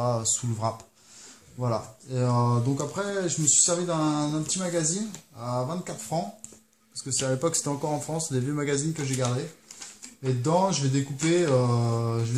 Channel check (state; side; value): identical; both; correlation 1.00